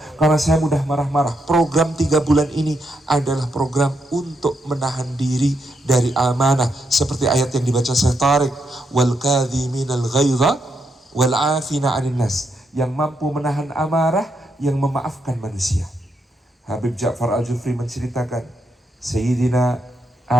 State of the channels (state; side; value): normal; both; correlation 0.80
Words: karena saya mudah marah-marah. Program 3 bulan ini adalah program untuk menahan diri dari amanah, seperti ayat yang dibaca Syekh Tariq, wal kadhiminal ghaidha wal 'afina 'anil nas, yang mampu menahan amarah, yang memaafkan manusia. Habib Ja'far Al-Jufri menceritakan Sayyidina